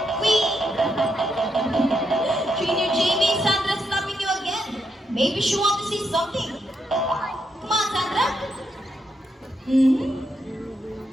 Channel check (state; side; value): normal; both; correlation 0.80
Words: we... Trainer JB, Sandra's stopping you again. Maybe she wants to see something. Come on, Sandra.